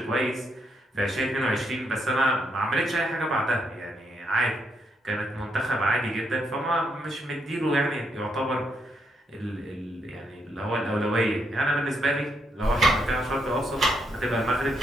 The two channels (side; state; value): both; normal; correlation 0.77